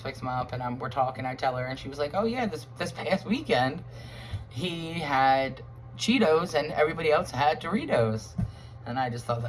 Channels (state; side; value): identical; both; correlation 1.00